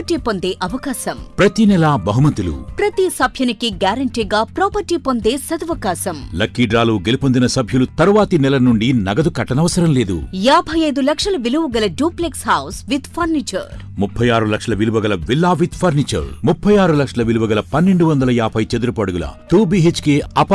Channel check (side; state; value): both; identical; correlation 1.00